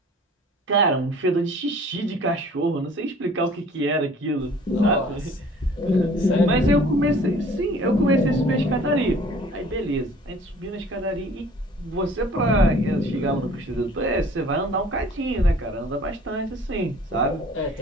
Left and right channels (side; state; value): both; normal; correlation 0.50